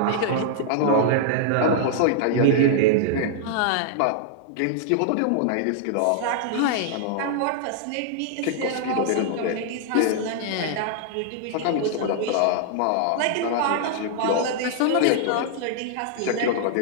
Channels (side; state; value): both; different; correlation -0.01